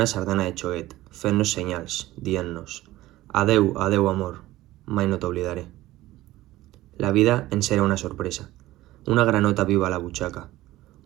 sardana de xoguet, fent-nos senyals, dient-nos «Adeu, adeu, amor, mai no t'oblidaré». La vida ens era una sorpresa, una granota viva a la butxaca,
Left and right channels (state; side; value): quieter; left; 16.6 dB